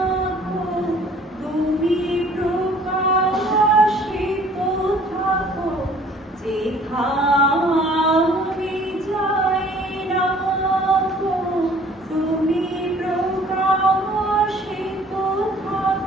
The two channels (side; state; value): both; normal; correlation 0.54